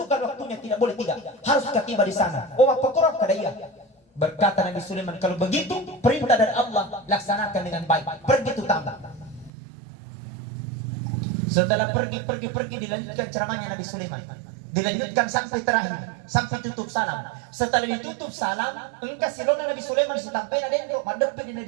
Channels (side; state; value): left; drops out; at 9.5 s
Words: waktunya, tidak boleh tidak. Harus tiba di sana. Oh, apa korok kada iya? Berkata Nabi Sulaiman, kalau begitu perintah dari Allah laksanakan dengan baik. Pergi itu tambah. Setelah pergi dilanjutkan ceramahnya Nabi Sulaiman. Dilanjutkan sampai terakhir, sampai tutup salam. Setelah ditutup salam, engkau silona Nabi Sulaiman sampai ada yang madep di